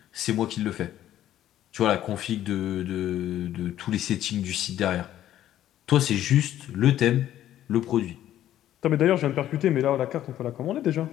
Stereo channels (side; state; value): right; quieter; 12.3 dB